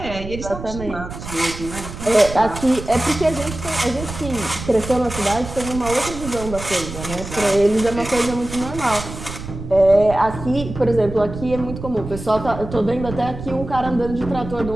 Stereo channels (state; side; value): noise; right; rumble, 10 dB below the sound